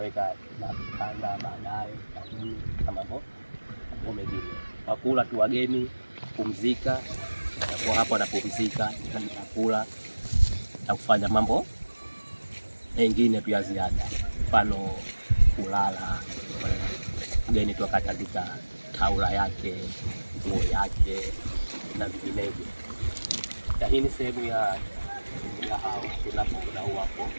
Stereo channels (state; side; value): inverted; both; correlation -1.00